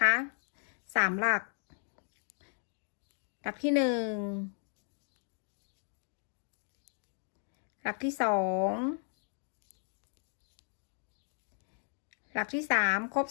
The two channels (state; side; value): silent; right; 54 dB below the other